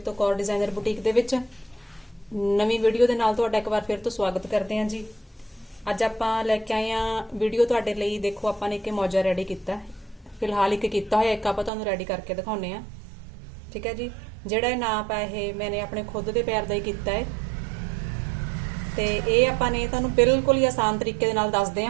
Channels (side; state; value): left; drops out; at 11.7 s